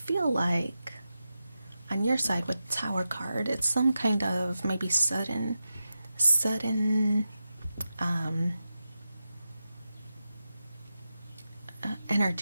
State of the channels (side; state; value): both; inverted; correlation -0.90